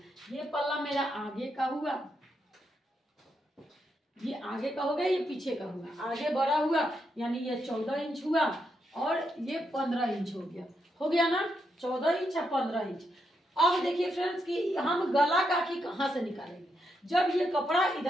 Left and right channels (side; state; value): both; normal; correlation 0.81